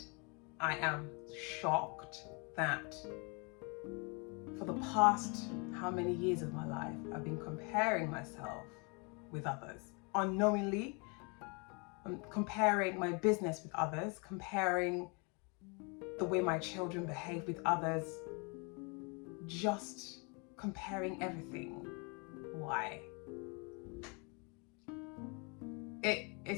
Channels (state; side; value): quieter; right; 32.4 dB